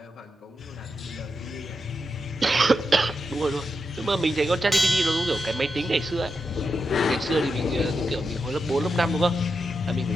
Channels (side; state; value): both; normal; correlation 0.86